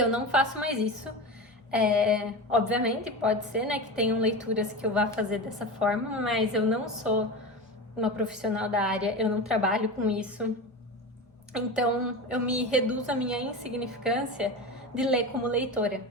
não faço mais isso. Obviamente, pode ser, né, que tenham leituras que eu vá fazer dessa forma, mas eu não sou uma profissional da área, eu não trabalho com isso. Então, eu me reduzo a minha insignificância de ler como leitora.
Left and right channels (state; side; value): normal; both; correlation 0.25